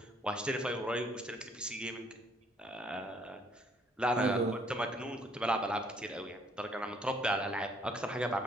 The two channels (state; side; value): normal; both; correlation 0.64